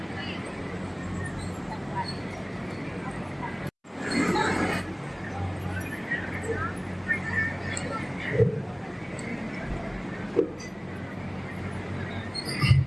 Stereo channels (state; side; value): identical; both; correlation 1.00